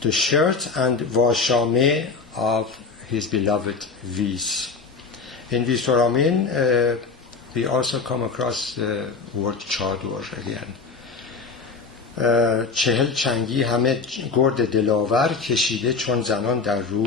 the shirt and washame of his beloved Vis. In Visoramin, we also come across the word chador again. 40 چنگی همه گرد دلاور کشیده چون زنان در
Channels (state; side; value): quieter; right; 4.7 dB